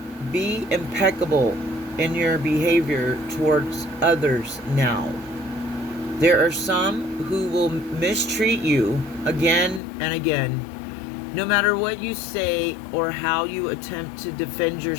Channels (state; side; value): drops out; right; at 9.8 s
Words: be impeccable in your behavior towards others now. There are some who will mistreat you again and again, no matter what you say or how you attempt to defend